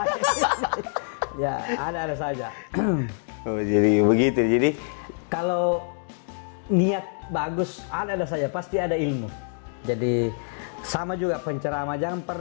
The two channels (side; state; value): right; silent; digital silence